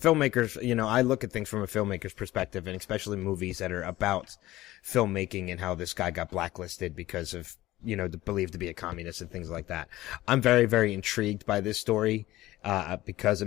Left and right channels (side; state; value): right; quieter; 16.5 dB